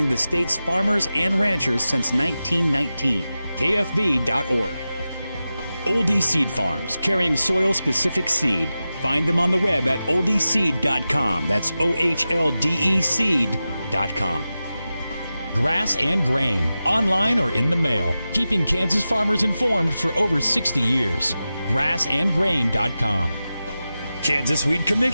the state's farmers and ranchers since 1919. KFB.org. Oldie Seed Farms, carrying soil-specific seed. Find them on the web at oldieseed.com. That's OHLDE seed.com. Grass and Grain, online or in the mail, keeping Kansas farmers informed for over 60 years. Grassandgrain.com. Kansas Wheat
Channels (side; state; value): both; inverted; correlation -0.93